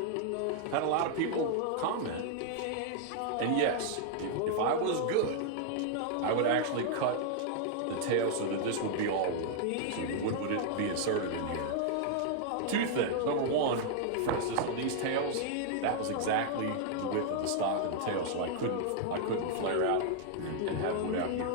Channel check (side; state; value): both; different; correlation -0.01